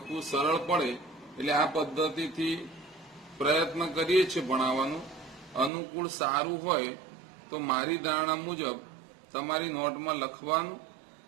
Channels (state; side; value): drops out; left; at 5.7 s